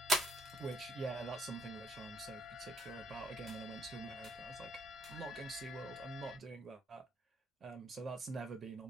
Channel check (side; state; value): both; normal; correlation 0.69